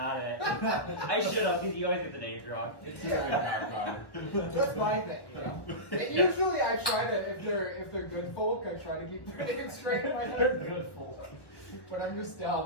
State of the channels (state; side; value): late; right; 1.2 ms